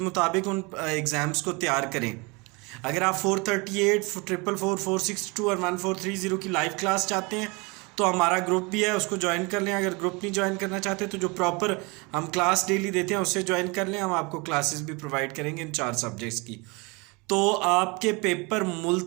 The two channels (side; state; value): left; quieter; 28.0 dB